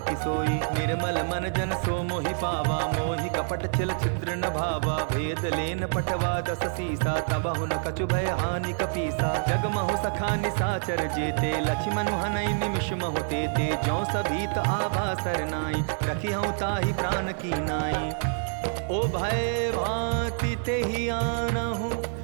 किसोई। निर्मल मन जन सो मोहि पावा मोहि कपट छिल छिद्र न भावा। भेद लेन पटवा दस सीसा तबहु न कछु भय हानि कपीसा। जगमहु सखा निसाचर जेते लक्ष्मण हनई निमिष महु ते। जो सभीत आभा सरनाई रखी हूँ ताहि प्राण की नाई। ओ भय भांति ते ही आनहु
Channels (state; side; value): silent; left; digital silence